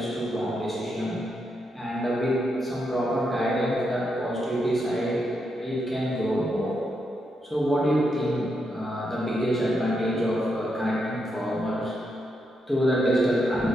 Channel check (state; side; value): normal; both; correlation 0.82